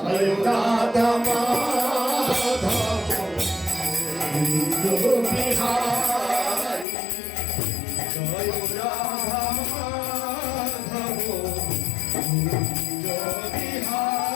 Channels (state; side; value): drops out; right; at 6.9 s